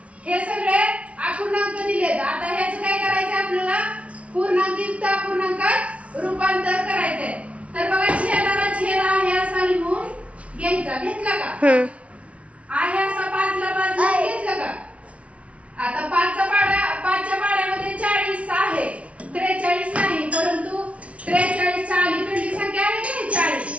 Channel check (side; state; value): left; late; 0.063 ms